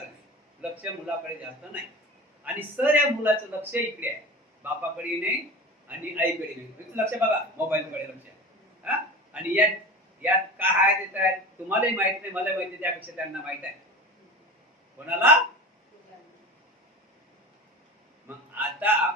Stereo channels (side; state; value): both; normal; correlation 0.32